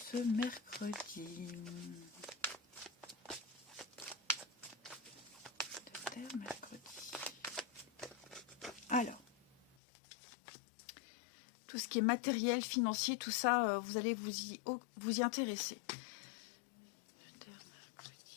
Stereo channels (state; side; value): drops out; right; at 9.8 s